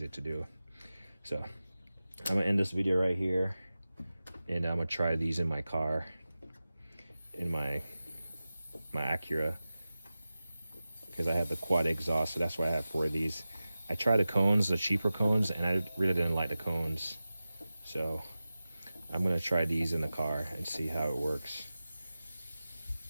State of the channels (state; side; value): inverted; both; correlation -0.95